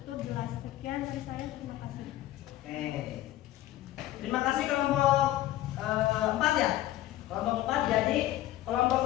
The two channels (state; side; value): quieter; right; 14.7 dB